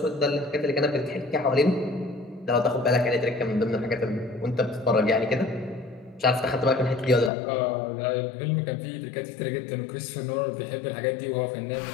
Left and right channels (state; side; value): drops out; right; at 7.3 s